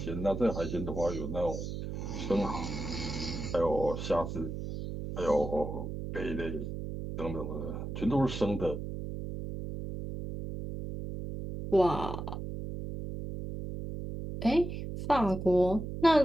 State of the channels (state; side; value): noise; right; hum, 6 dB below the sound